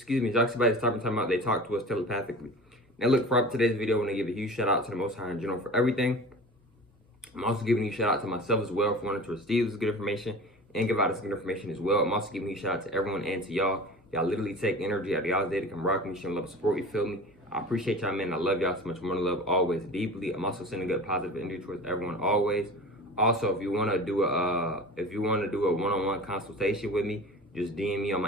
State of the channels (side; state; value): both; normal; correlation 0.36